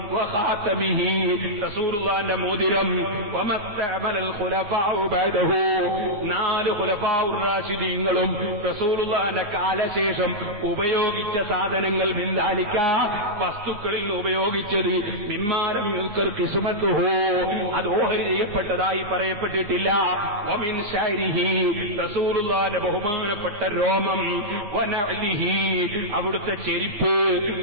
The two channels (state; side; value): late; left; 9.7 ms